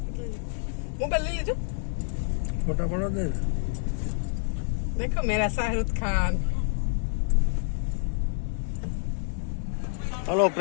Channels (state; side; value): silent; right; digital silence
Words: લઈ લો. મોબાઈલ લઈ લેજો. ફોટા પડો દે. देखो मेरा Shahrukh Khan. Hello